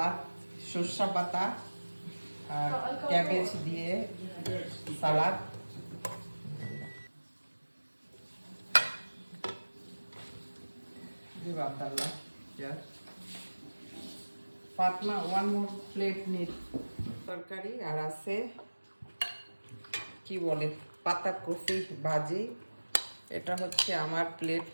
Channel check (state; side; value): inverted; both; correlation -1.00